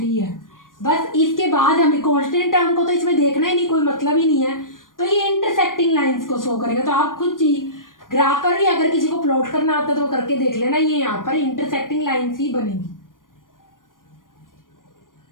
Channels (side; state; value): right; late; 0.90 ms